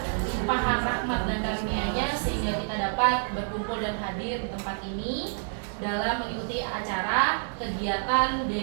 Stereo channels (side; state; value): left; silent; digital silence